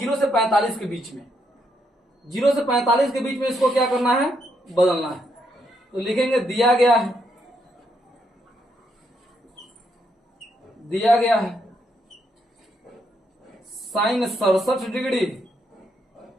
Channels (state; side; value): normal; both; correlation 0.77